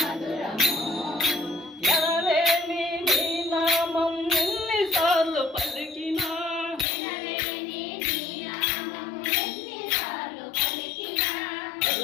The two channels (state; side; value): drops out; right; at 6.9 s